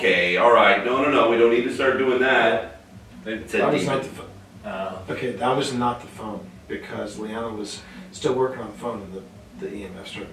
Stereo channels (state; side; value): identical; both; correlation 1.00